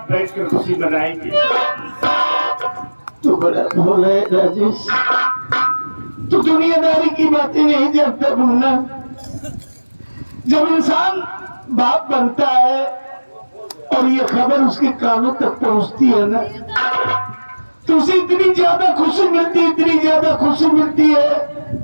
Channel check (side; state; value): both; inverted; correlation -1.00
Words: बैठकर खुशी मनाएंगे। तू बड़ा भोला है राजेश, तू दुनियादारी की बातें नहीं जानता भूलना। जब इंसान बाप बनता है और ये खबर उसके कानों तक पहुंचती है ना, तो उसे इतनी ज्यादा खुशी मिलती है, इतनी ज्यादा खुशी मिलती है